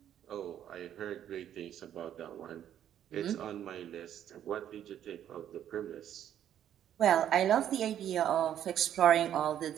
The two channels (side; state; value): left; quieter; 10.4 dB